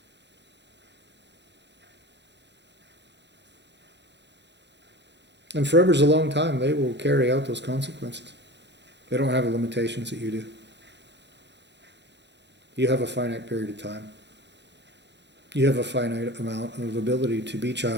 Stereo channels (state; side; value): late; left; 0.51 ms